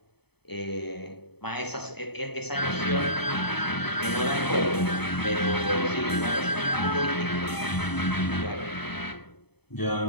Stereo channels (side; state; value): right; late; 0.98 ms